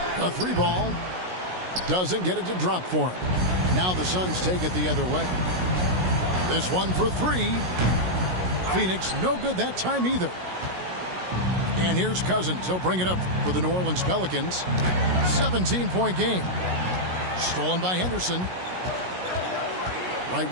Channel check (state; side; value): late; left; 16 ms